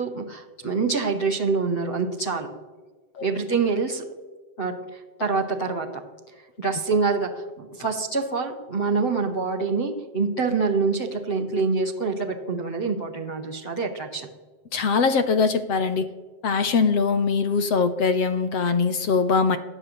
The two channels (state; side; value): late; right; 7.7 ms